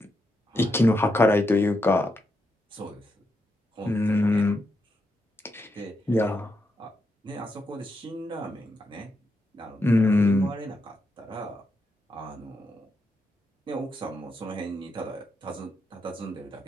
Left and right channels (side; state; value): both; normal; correlation 0.83